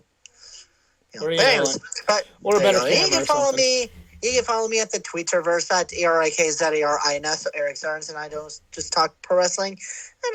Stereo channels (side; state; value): both; identical; correlation 1.00